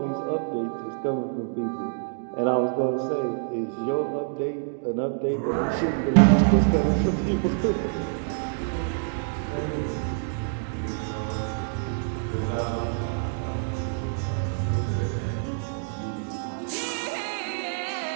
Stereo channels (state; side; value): silent; left; digital silence